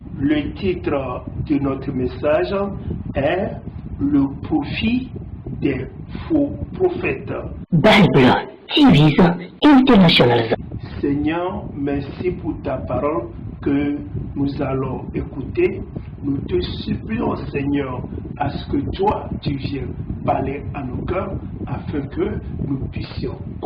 Le titre de notre message est Le profit des faux prophètes. Bible TV International. Seigneur, merci pour ta parole que nous allons écouter. Nous te supplions, Seigneur, à ce que toi, tu viennes parler à nos cœurs afin que nous puissions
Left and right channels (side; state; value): both; identical; correlation 1.00